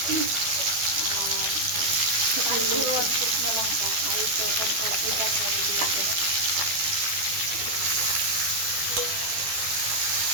আর শুকনো লঙ্কা আর এই এখন সবজিটা করে দিয়েছে।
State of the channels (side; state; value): left; late; 12 ms